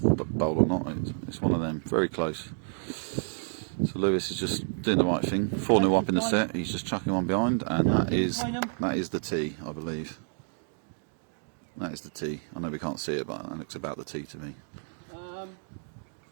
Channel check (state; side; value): silent; left; digital silence